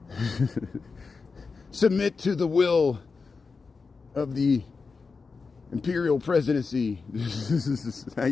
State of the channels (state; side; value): quieter; right; 4.6 dB